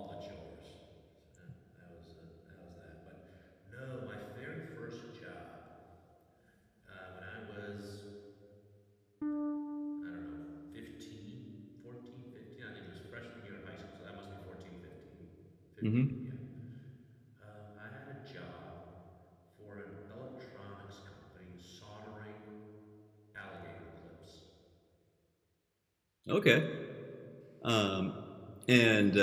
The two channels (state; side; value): identical; both; correlation 1.00